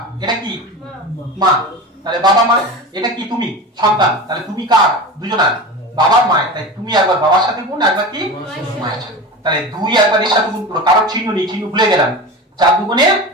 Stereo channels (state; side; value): normal; both; correlation 0.29